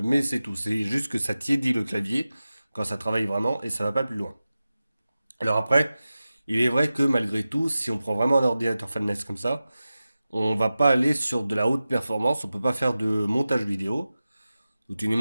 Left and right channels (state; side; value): inverted; both; correlation -0.95